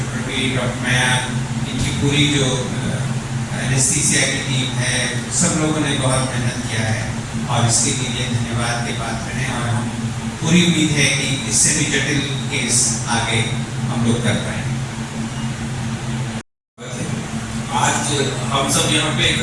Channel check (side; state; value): both; identical; correlation 1.00